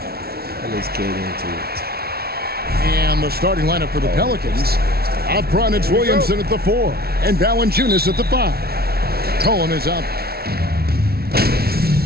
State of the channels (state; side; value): late; left; 0.45 ms